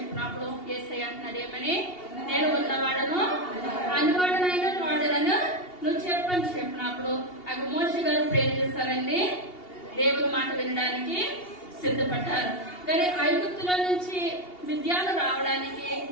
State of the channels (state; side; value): late; right; 2.8 ms